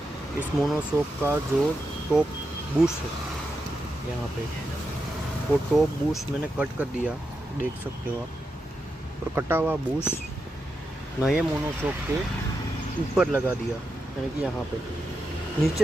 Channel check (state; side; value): normal; both; correlation 0.87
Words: इस मोनोशॉक का जो टॉप बूश है यहाँ पे, वो टॉप बूश मैंने कट कर दिया, देख सकते हो आप। और कटा हुआ बूश नए मोनोशॉक के ऊपर लगा दिया, यानी कि यहाँ पे